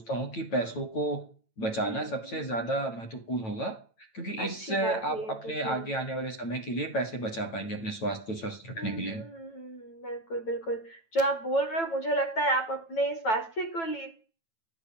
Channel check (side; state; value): right; late; 9.0 ms